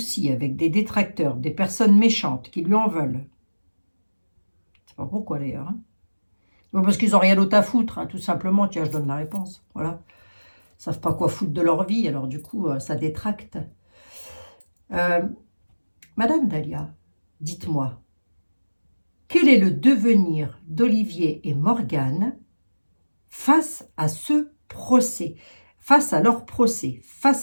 avec des détracteurs, des personnes méchantes qui lui en veulent. Je ne sais pas pourquoi d'ailleurs. Hein. Bon, parce qu'ils n'ont rien d'autre à foutre, hein, tout simplement. Tiens, je donne la réponse. Voilà. Ils ne savent pas quoi foutre de leur vie, alors du coup, ça détracte. Madame Dahlia, dites-moi, quel est le devenir d'Olivier et Morgane face à ce procès, face à leur procès,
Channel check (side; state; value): both; inverted; correlation -1.00